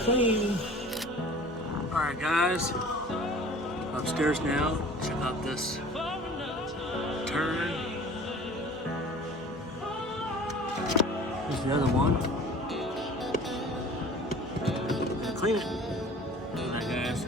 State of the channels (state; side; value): normal; both; correlation 0.44